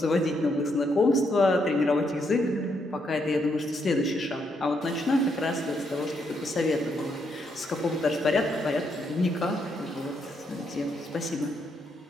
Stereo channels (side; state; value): both; normal; correlation 0.77